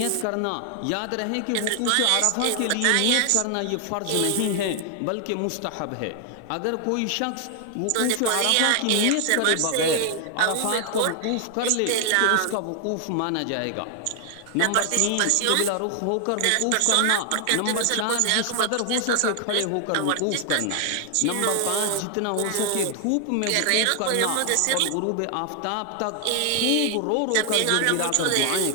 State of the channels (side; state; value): both; different; correlation 0.00